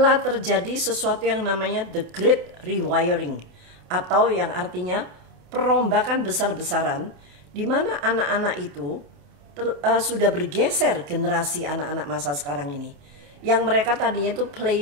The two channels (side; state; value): left; late; 28 ms